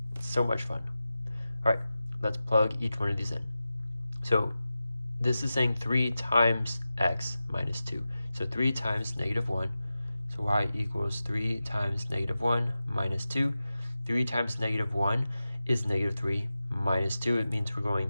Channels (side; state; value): both; inverted; correlation -0.94